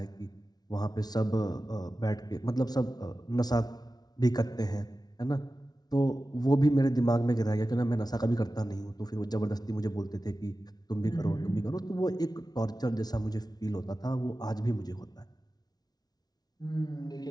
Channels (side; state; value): right; late; 0.19 ms